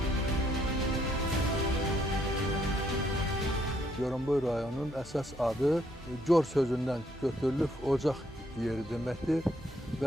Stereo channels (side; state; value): both; normal; correlation 0.71